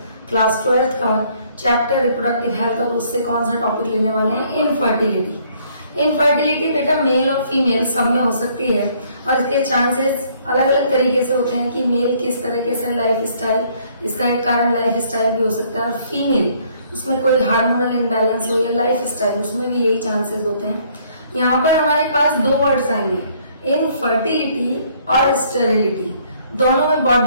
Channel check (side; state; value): both; inverted; correlation -0.64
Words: क्लास 12th का चैप्टर रिप्रोडक्टिव हेल्थ। और उससे कौन सा टॉपिक लेने वाले हैं? इनफर्टिलिटी। इनफर्टिलिटी बेटा मेल और फीमेल सब में हो सकती है और इसके चांसेस अलग अलग तरीके से होते हैं कि मेल किस तरीके से लाइफ स्टाइल, इसका एक कारण लाइफ स्टाइल भी हो सकता है, और फीमेल उसमें कोई हार्मोनल इम्बैलेंस हो या लाइफ स्टाइल, उसमें भी यही चांसेस होते हैं। यहाँ पर हमारे पास दो वर्ड्स आएंगे, इनफर्टिलिटी और स्टेरिलिटी। दोनों में बहुत